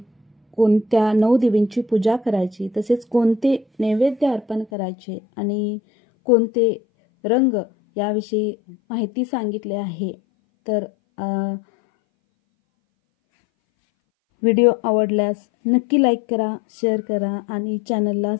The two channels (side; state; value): right; drops out; at 4.7 s